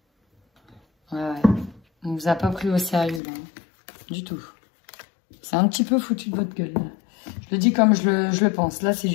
Ouais. On vous a pas pris au sérieux. Hein. Du tout. C'est un petit peu foutu de votre gueule. Là. Je le dis comme je le pense. Là, c'est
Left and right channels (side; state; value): right; drops out; at 3.2 s